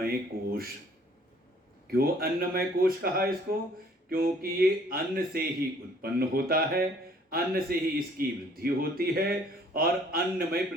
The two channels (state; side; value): normal; both; correlation 0.58